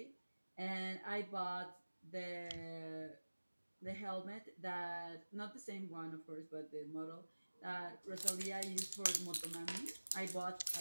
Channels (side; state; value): both; inverted; correlation -1.00